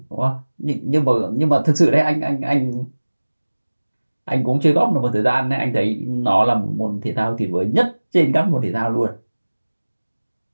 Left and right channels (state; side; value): inverted; both; correlation -1.00